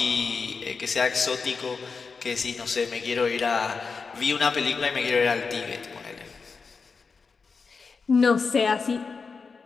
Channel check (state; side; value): quieter; right; 4.9 dB